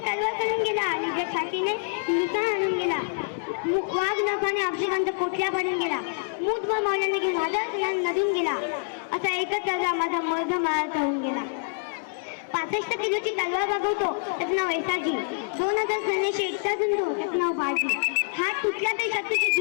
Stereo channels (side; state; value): right; silent; 61 dB below the other